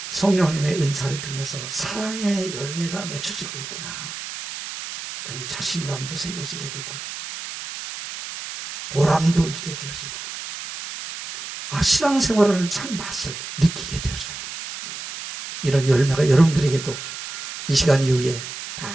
성령님의 은사를 통해서 사랑의 열매가 맺혀지고 있구나. 그러면 자신감도 생겨지게 되고 보람도 있게 되어지고 신앙생활하는 참 맛을 느끼게 되어져요. 이런 열매가 여러분들에게도 이 시간 이후에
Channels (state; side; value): noise; right; hiss, 9 dB below the sound